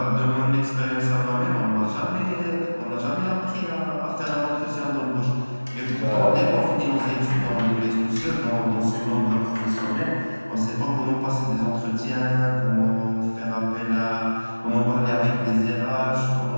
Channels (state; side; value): inverted; both; correlation -1.00